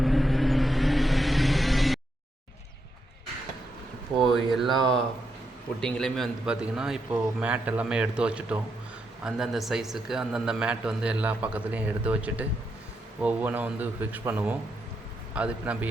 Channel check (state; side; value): normal; both; correlation 0.81